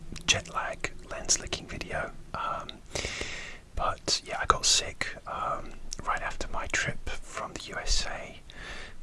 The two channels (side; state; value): both; identical; correlation 1.00